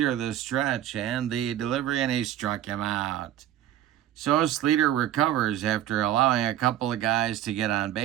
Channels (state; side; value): quieter; left; 12.0 dB